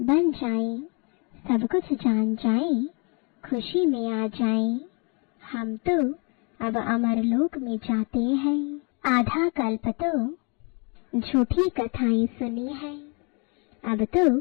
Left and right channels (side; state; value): right; quieter; 33.7 dB